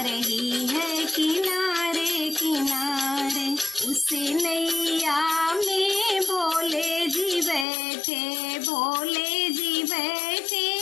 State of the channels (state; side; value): drops out; right; at 7.7 s